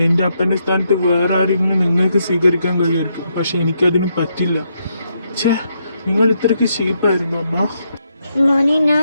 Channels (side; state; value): both; inverted; correlation -0.79